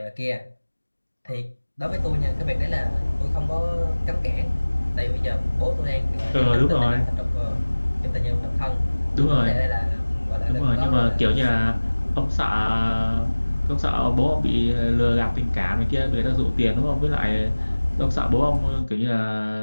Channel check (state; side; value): inverted; both; correlation -1.00